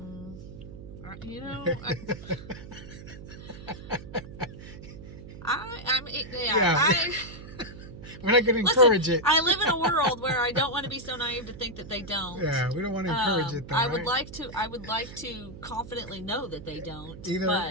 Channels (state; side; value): noise; right; hum, 14 dB below the sound